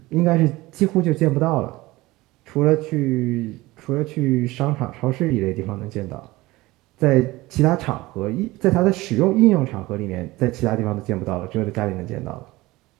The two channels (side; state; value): left; quieter; 19.7 dB